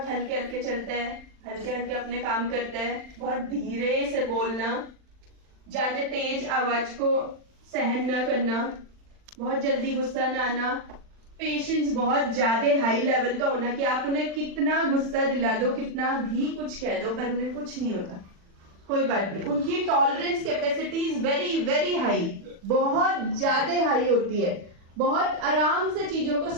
हल्के हल्के चलता है, हल्के हल्के अपने काम करता है, बहुत धीरे से बोलना, ज्यादा तेज आवाज को सहन न करना, बहुत जल्दी गुस्सा न आना, पेशेंस बहुत ज्यादा हाई लेवल का होना कि आप उन्हें कितना गुस्सा दिला दो, कितना भी कुछ कह दो, पर उन्हें कुछ नहीं होता, कोई बात नहीं। उनकी tolerance capacity is very very high, बहुत ज्यादा हाई होती है, बहुत आराम से चीजों को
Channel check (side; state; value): left; late; 40 ms